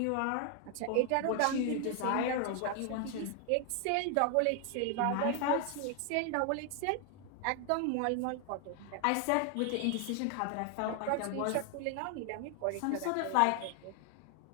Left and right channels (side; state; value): both; different; correlation 0.00